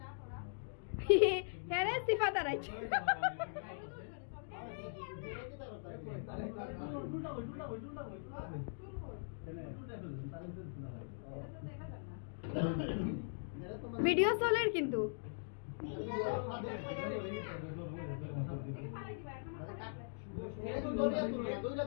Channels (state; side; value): silent; right; digital silence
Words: হ্যাঁ রে সিফা দাঁড়াইছে ভিডিও চলে কিন্তু